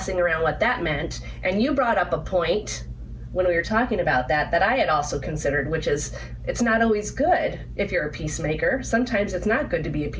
around what that meant, and you brought up a point when we were talking about that I had also considered, which is it's not always good if you're a peacemaker. Sometimes it's not good to be a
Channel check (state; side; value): identical; both; correlation 1.00